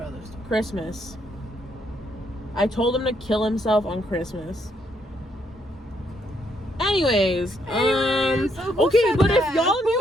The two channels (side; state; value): both; normal; correlation 0.73